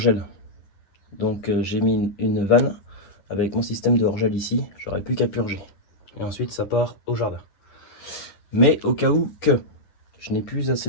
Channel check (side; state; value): right; late; 9.9 ms